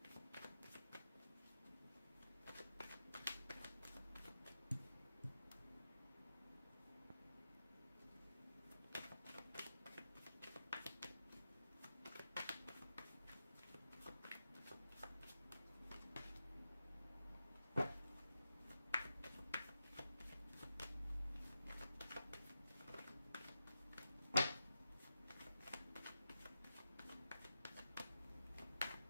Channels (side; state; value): both; inverted; correlation -0.90